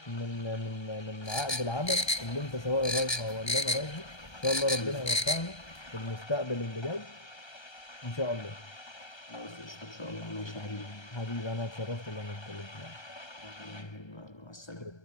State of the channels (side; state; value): right; late; 1.3 ms